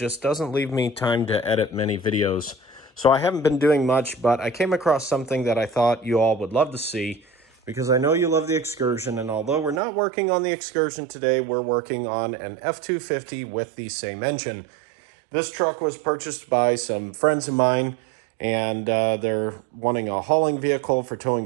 doesn't leave me time to edit many videos. So I haven't been doing much, but I came across something that I thought you all would love to see, because I know you love the Excursion, and although we're not working on the Excursion today, we're working on an F-250 with the same engine. This truck was purchased by some friends of mine, and they're wanting a hauling vehicle for towing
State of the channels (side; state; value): left; drops out; at 9.8 s